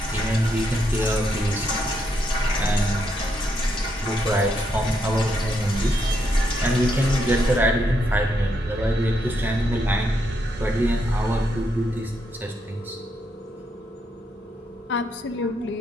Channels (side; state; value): both; normal; correlation 0.78